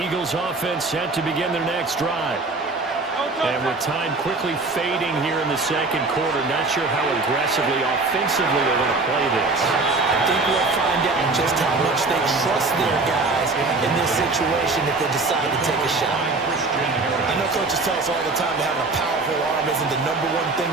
offense set to begin their next drive. And with time quickly fading here in the second quarter, not sure how aggressively, offensively they're going to play this. I think we'll find out just how much they trust their guys in this situation if they decide to take a shot. I know coaches tell us all the time that having a powerful arm isn't the #1 thing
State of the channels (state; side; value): quieter; left; 3.5 dB